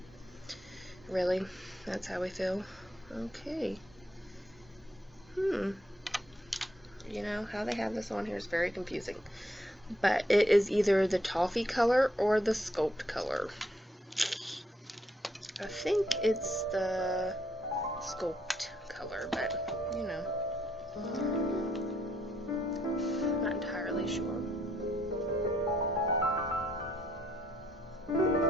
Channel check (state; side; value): normal; both; correlation 0.73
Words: Really? That's how we feel? Okay. You know, how they have this on here is very confusing. But it is either the toffee color or the sculpt color. I think it's the sculpt color, but, you know, I'm not entirely sure.